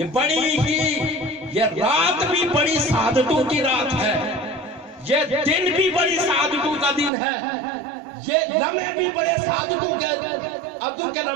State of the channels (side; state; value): left; drops out; at 7.1 s